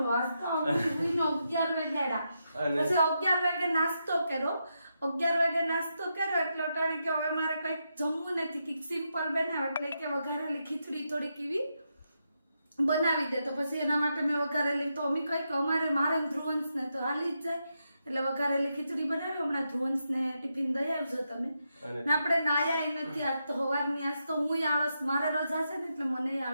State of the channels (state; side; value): inverted; both; correlation -0.84